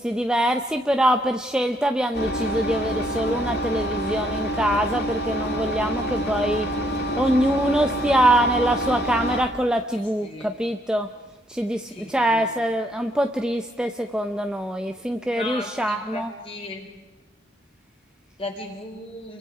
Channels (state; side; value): normal; both; correlation 0.71